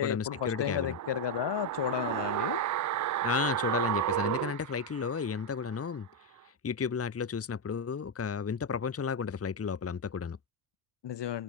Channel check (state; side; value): normal; both; correlation 0.04